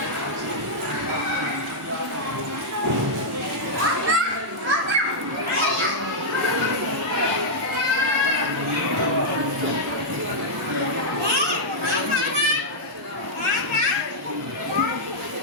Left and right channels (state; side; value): normal; both; correlation -0.07